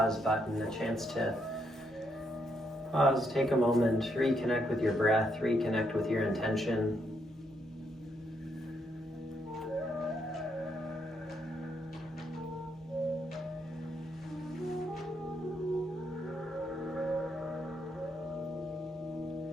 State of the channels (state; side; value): normal; both; correlation 0.77